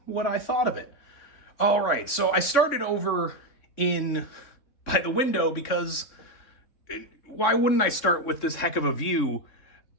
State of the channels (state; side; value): late; right; 3.6 ms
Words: what I thought of it. All right, so I started over by the window because why wouldn't I start with this heck of a view